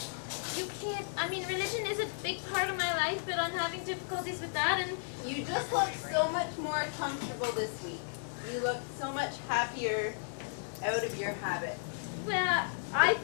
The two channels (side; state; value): right; silent; digital silence